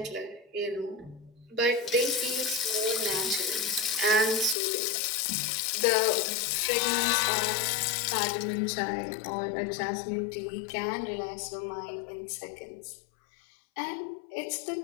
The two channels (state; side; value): drops out; right; at 4.5 s